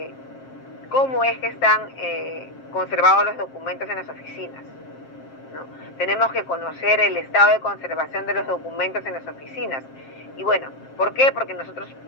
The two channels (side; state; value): right; late; 7.5 ms